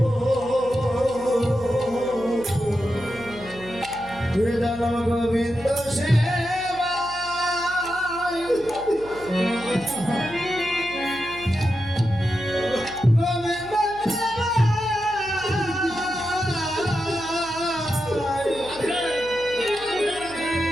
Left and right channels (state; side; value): noise; right; hum, 19 dB below the sound